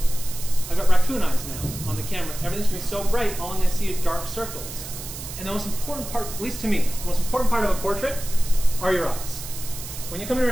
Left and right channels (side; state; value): right; noise; hiss, 10 dB below the sound